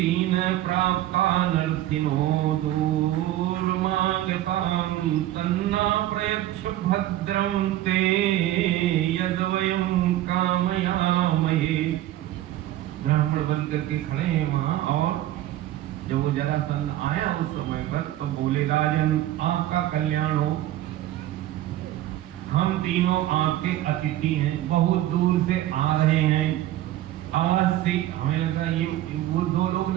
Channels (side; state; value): left; quieter; 14.0 dB